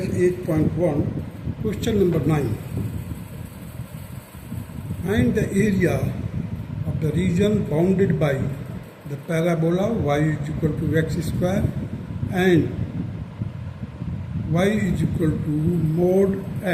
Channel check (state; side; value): identical; both; correlation 1.00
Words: 8.1, Question number 9. Find the area of the region bounded by the parabola y is equal to x square and y is equal to mod